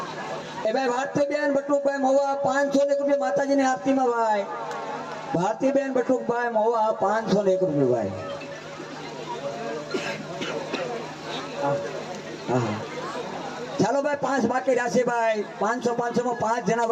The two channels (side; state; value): both; identical; correlation 1.00